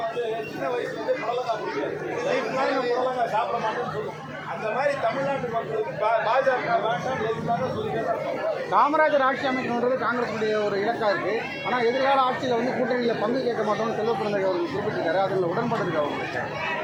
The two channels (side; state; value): both; identical; correlation 1.00